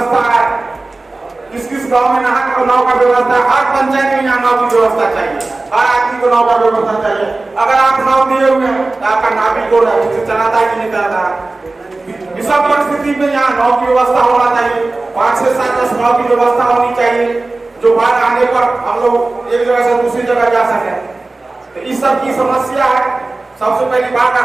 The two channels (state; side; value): quieter; left; 3.3 dB